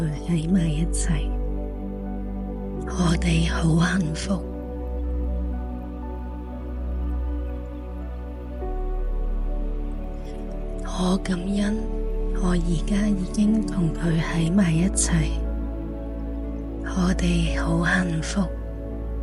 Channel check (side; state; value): both; identical; correlation 1.00